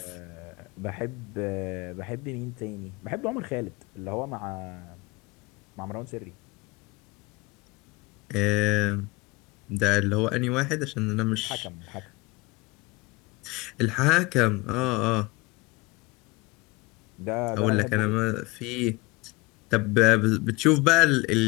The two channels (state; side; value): quieter; right; 24.1 dB